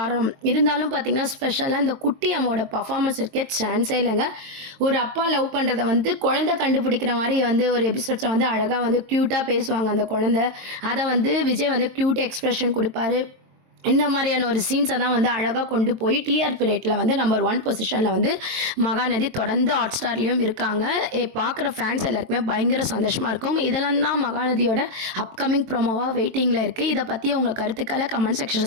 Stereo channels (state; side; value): late; left; 23 ms